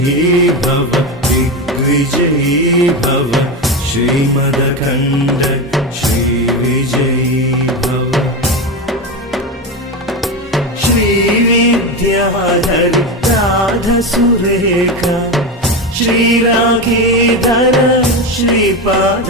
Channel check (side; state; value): both; normal; correlation 0.17